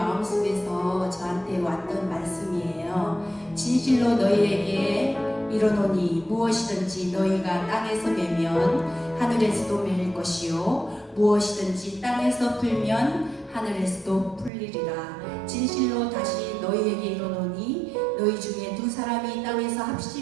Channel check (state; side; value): drops out; left; at 14.5 s